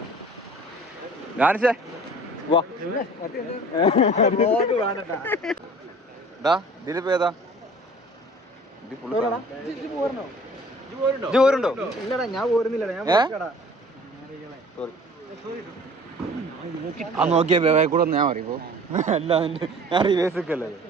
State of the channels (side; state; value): both; normal; correlation 0.48